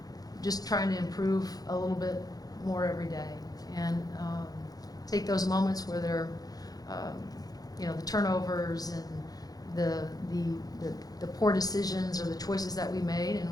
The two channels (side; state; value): right; late; 0.18 ms